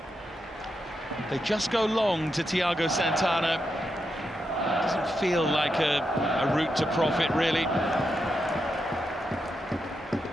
They just go long to Thiago Santana. Doesn't feel like a route to profit, really.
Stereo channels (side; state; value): both; normal; correlation 0.85